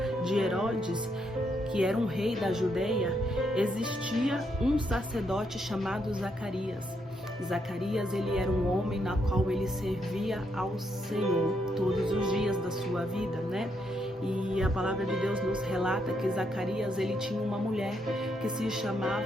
de Herodes, que era um rei da Judeia, existia um sacerdote chamado Zacarias. Zacarias, ele era um homem na qual ele servia ao Senhor todos os dias da sua vida, né? E a palavra de Deus nos relata que Zacarias, ele tinha uma mulher que se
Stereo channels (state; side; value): normal; both; correlation 0.77